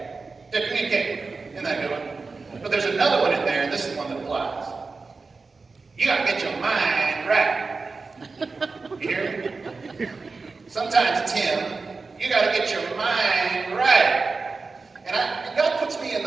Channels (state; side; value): quieter; left; 4.2 dB